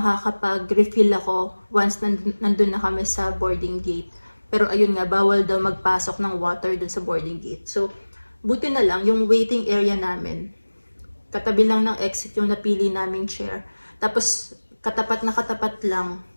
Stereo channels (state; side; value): inverted; both; correlation -1.00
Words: ako once nandun na kami sa boarding gate. Pero ayun nga, bawal daw magpasok ng water dun sa boarding gate. So, buti na lang, yung waiting area namin, katabi lang ng exit yung napili naming chair. Tapos, katapat na katapat lang,